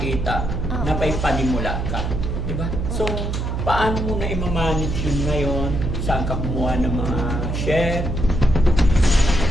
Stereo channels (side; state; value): right; noise; hum, 2 dB below the sound